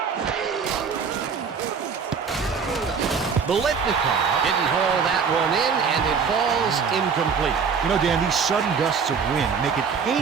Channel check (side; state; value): left; quieter; 6.0 dB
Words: Bolitnikov didn't haul that one in, and it falls incomplete. You know, Dan, these sudden gusts of wind make it